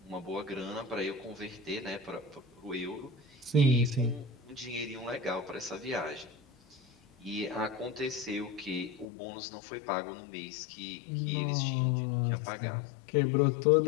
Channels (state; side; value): drops out; right; at 9.1 s